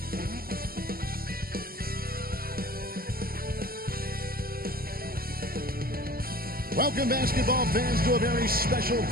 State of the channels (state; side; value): late; left; 0.43 ms